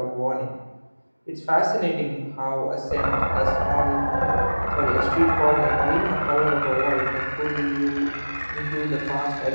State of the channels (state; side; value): inverted; both; correlation -1.00